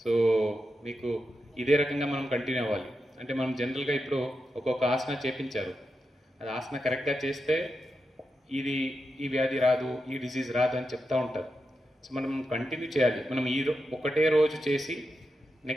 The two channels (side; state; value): both; normal; correlation 0.88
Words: సో మీకు ఇదే రకంగా మనం కంటిన్యూ అవ్వాలి. అంటే మనం జనరల్గా ఇప్పుడు ఒక్కొక్క ఆసన చేపించారు, అది ఆసన కరెక్ట్గా చేస్తే ఈ వ్యాధి రాదు, ఈ డిజీజ్ రాదు అని చెప్తూ ఉంటారు. సో మనం కంటిన్యూ చేయాలి. మనం ఒకటే రోజు చేసి